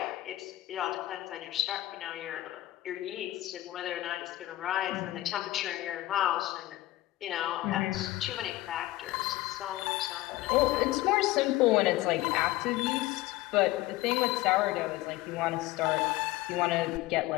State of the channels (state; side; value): quieter; right; 17.0 dB